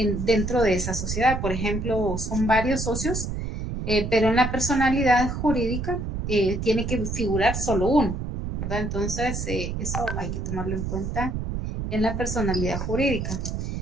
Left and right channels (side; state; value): right; noise; rumble, 4 dB below the sound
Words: de esa sociedad. Por ejemplo, son varios socios pero en la personalidad jurídica tiene que figurar solo uno, ¿verdad? Entonces, eso hay que tomarlo en cuenta en la personalidad jurídica.